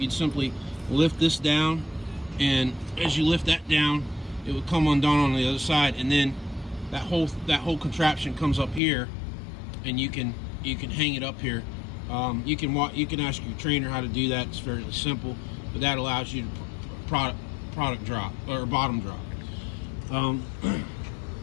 simply lift this down, and as you lift that down, it would come undone on the other side, and then that whole contraption comes up here, and you can hang it up here. You can ask your trainer how to do that. It's fairly simple, but that allows you to product drop or bottom drop.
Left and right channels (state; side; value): drops out; right; at 8.8 s